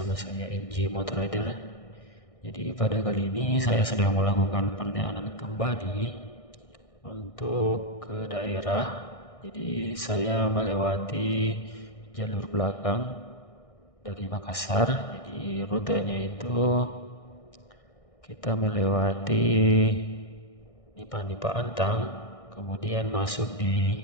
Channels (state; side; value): late; right; 1.6 ms